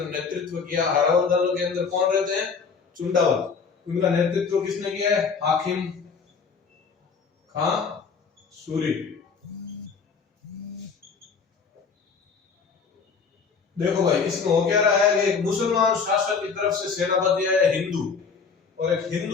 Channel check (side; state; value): right; quieter; 5.5 dB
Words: नेतृत्व किया। हरावल दल के अंदर कौन रहते हैं? चुंडावल। उनका नेतृत्व किसने किया है? हाकिम खां सूरी। देखो भाई, इसमें हो क्या रहा है कि एक मुसलमान शासक की तरफ से सेनापति है हिंदू, और एक